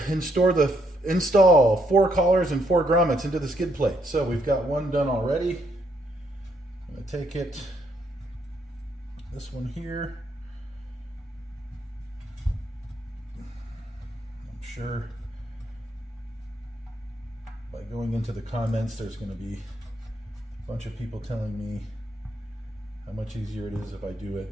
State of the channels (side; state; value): both; normal; correlation 0.73